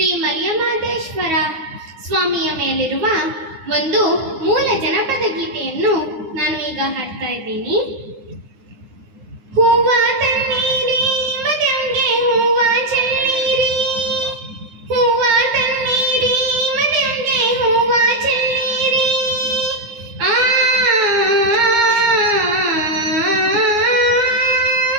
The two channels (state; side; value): late; left; 9.8 ms